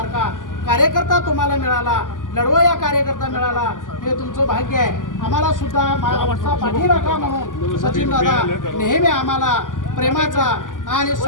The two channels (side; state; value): right; late; 0.88 ms